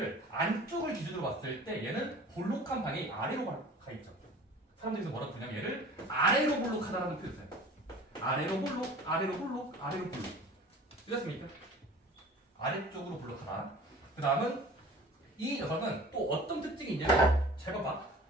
안쪽을 기준으로 봤을 때 얘는 볼록한 방향이 아래로 가 있죠. 사람들이 뭐라고 부르냐면 얘를 아래로 볼록하다라는 표현을 써요. 아래로 볼록, 아래로 볼록, 아래로 볼록. 이렇습니까? 아래쪽으로 볼록하다. 그 다음은 이 녀석은 또 어떤 특징이 있냐면 잘 봐봐.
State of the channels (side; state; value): both; normal; correlation 0.44